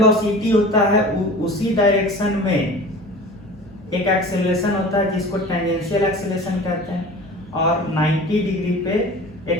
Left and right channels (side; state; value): both; normal; correlation 0.39